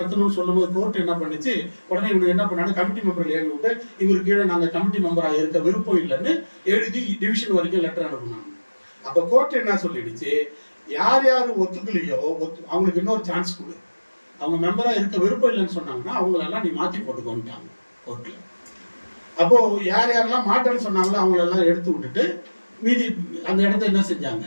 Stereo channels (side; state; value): both; inverted; correlation -1.00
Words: சொல்லும்போது கோர்ட் என்ன பண்ணிச்சு, உடனே இவங்க என்ன பண்ணாங்க, கமிட்டி மெம்பர் எழுதி விட்டு இவர் கீழே நாங்கள் கமிட்டி மெம்பராக இருக்க விருப்பம் இல்லைன்னு எழுதி டிவிஷன் வரைக்கும் லெட்டர் அனுப்புனாங்க. அப்போ கோர்ட் என்ன சொல்லிடுச்சு, யார் யார் ஒத்துக்கலையோ அவங்களுக்கு இன்னொரு சான்ஸ் கொடு, அவங்க மெம்பராக இருக்க விருப்பம் இல்லைன்னு சொன்னாங்கன்னா அவங்களெல்லாம் நீ மாற்றி போட்டுக்கோன்ட்டாங்க கோர்ட்டில். அப்போது யார் யாரெல்லாம் மாட்டேன்னு சொன்னாங்களோ அவங்களெல்லாம் எடுத்து விட்டுட்டு மீதி அந்த இடத்த என்ன செஞ்சாங்க,